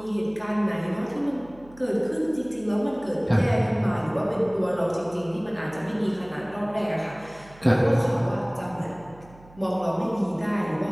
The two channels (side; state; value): right; noise; hum, 23 dB below the sound